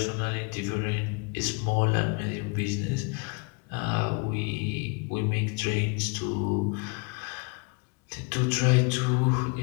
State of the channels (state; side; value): quieter; right; 32.1 dB